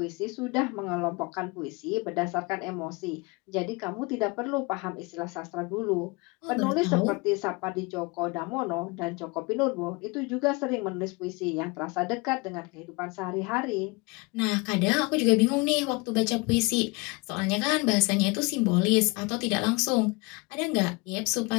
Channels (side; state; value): right; quieter; 26.9 dB